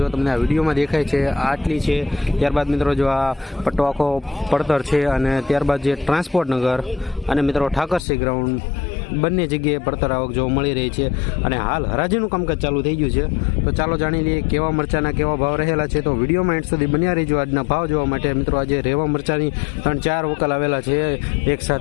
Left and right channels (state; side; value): drops out; right; at 8.0 s